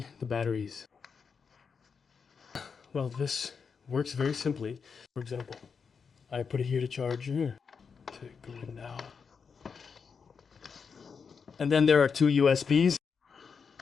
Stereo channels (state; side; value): quieter; right; 5.8 dB